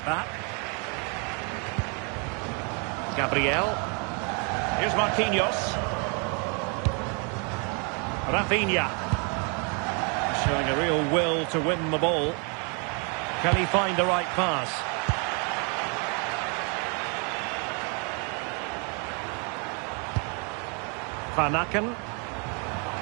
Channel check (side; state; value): left; quieter; 35.6 dB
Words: that. Gabriel. Here's Marquinhos. Rafinha. Showing a real will to win the ball. Can he find the right pass? Van Aken.